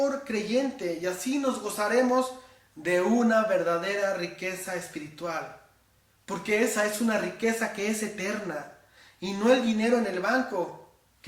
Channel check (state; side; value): identical; both; correlation 1.00